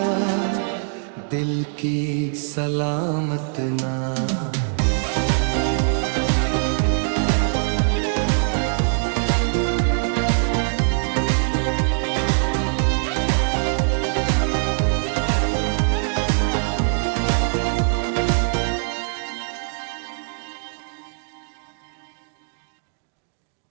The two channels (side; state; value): left; silent; digital silence